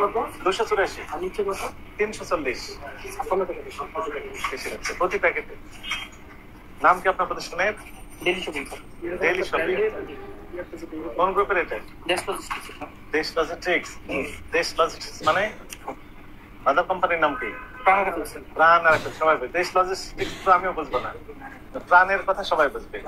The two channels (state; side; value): identical; both; correlation 1.00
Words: 284 340 প্রতি প্যাকেটে। নাম কি আপনার প্রতিষ্ঠানের? Daily shopping. Daily shopping. কোন গ্রুপের এটা? দেশ লজিস্টিক্স। দেশ লজিস্টিক্স মানে আদার কোম্পানির নাম কি? প্রাণ আরোপের। সবাই বুঝবে। দেশ লজিস্টিক্স তো আমিও বুঝবো না, প্রাণের কথা সবাই বুঝবে।